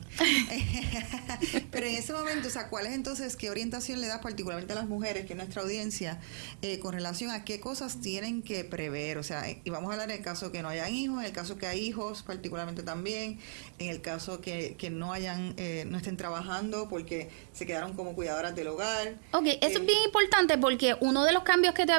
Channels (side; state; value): left; silent; digital silence